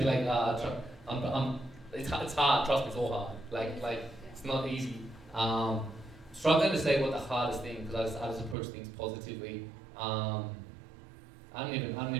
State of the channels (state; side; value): drops out; left; at 8.6 s